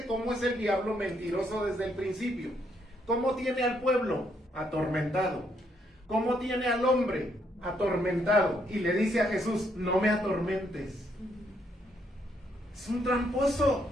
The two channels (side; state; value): both; normal; correlation 0.73